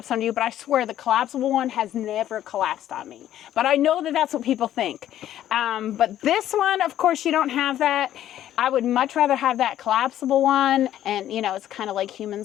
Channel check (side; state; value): right; quieter; 12.0 dB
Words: on you. But I swear the collapsible one has never collapsed on me. But I know that that's what people think. But this one, of course, you don't have that. I would much rather have that collapsible one. And you know, it's kind of like